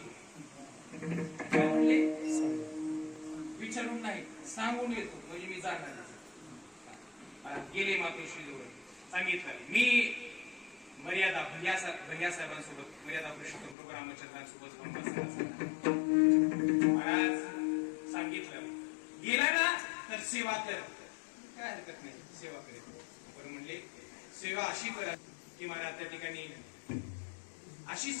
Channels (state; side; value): drops out; right; at 13.8 s